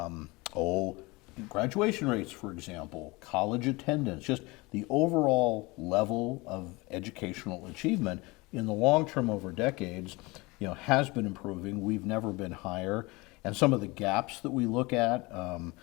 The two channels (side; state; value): right; quieter; 24.0 dB